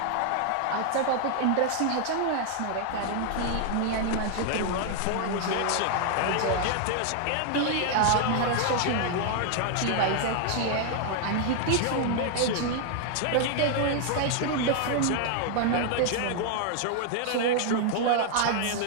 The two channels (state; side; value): different; both; correlation 0.00